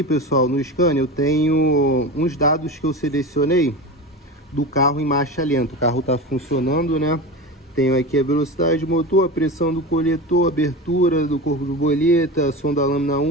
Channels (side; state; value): both; normal; correlation 0.27